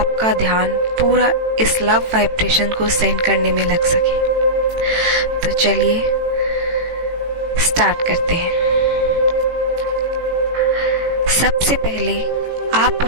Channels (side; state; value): left; late; 18 ms